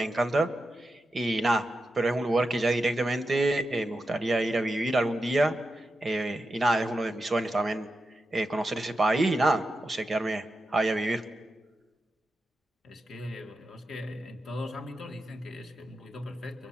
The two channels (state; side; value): normal; both; correlation 0.89